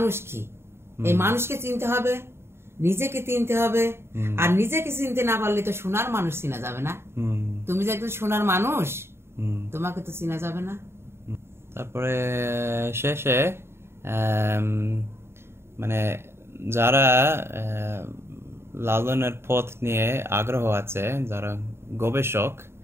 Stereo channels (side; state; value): left; late; 0.12 ms